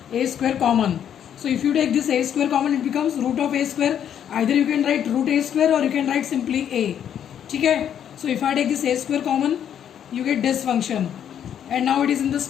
a square common. So if you take this a square common, it becomes root of a square. Either you can write root a square or you can write simply a. ठीक है? So if I take this a square common, you get this function, and now it is in the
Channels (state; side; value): quieter; right; 9.4 dB